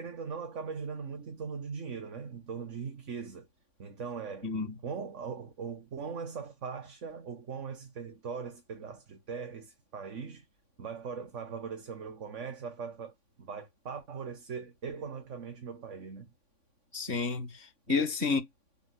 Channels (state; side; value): late; left; 3.5 ms